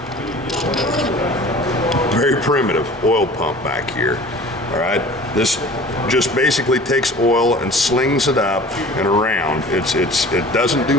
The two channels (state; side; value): normal; both; correlation 0.43